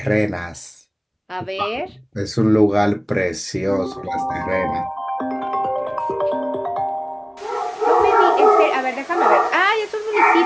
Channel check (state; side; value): identical; both; correlation 1.00